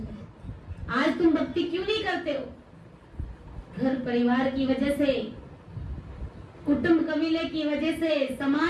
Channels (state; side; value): identical; both; correlation 1.00